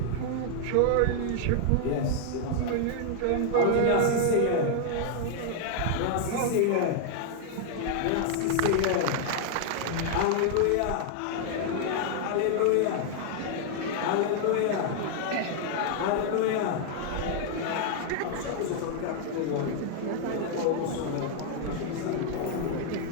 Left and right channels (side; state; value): both; different; correlation 0.00